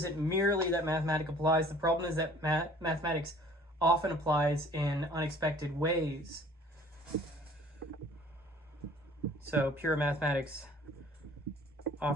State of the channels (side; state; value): both; normal; correlation 0.52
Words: merely that mathematics applies. The problem is that mathematics often applies in unexpected ways. So pure mathematics